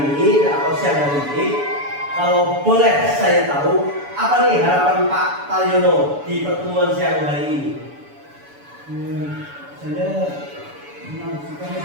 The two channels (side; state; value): left; late; 7.0 ms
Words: ini atau siang hari ini, kalau boleh saya tahu apa nih harapan Pak Taryono di pertemuan siang hari ini? Saya senang sekali